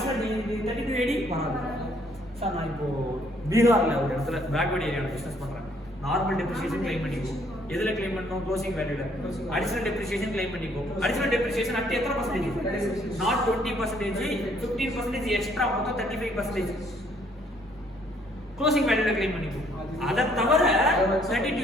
3280 வராது. சார் நான் இப்போ பீகார்ல ஒரு இடத்துல பேக்வர்ட் ஏரியாவில் பிசினஸ் பண்றேன், நார்மல் டெப்ரிசியேஷன் கிளைம் பண்ணிக்கோ. எதுல கிளைம் பண்ணணும்? க்ளோசிங் வேல்யூல. அடிஷனல் டெப்ரிசியேஷன் கிளைம் பண்ணிக்கோ. அடிஷனல் டெப்ரிசியேஷன் அட் எத்தனை பர்சன்டேஜ்? நாட் 20%, 15% எக்ஸ்ட்ரா, மொத்தம் 35%. க்ளோசிங் வேல்யூல கிளைம் பண்ணிக்கோ. அதை தவிர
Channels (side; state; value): both; normal; correlation 0.65